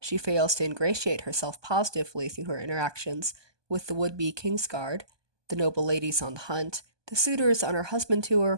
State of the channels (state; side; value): late; left; 1.2 ms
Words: fails to ingratiate herself positively through her interactions with the would-be Kingsguard, the noble ladies on the hunt, the suitors on her husband to